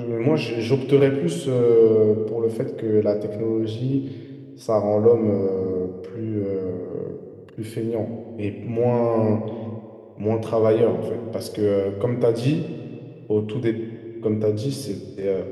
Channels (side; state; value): both; identical; correlation 1.00